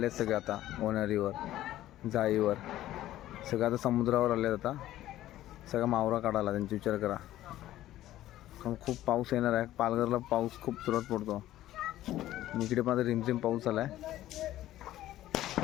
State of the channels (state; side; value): quieter; right; 14.1 dB